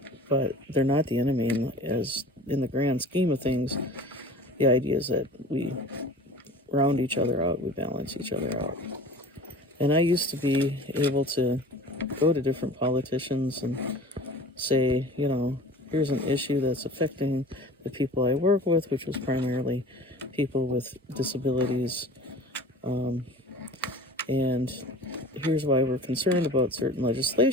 but they're not the enemy. As in the grand scheme of things, the idea is that we round each other out, we balance each other out. And I used to be able to go to different politicians and say, you know, here's an issue that's affecting the people I work with, which was primarily people with disabilities. And here's why we're concerned about certain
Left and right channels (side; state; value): both; normal; correlation 0.41